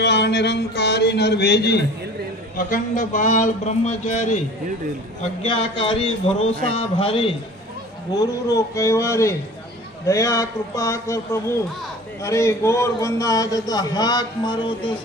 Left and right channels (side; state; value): both; normal; correlation 0.43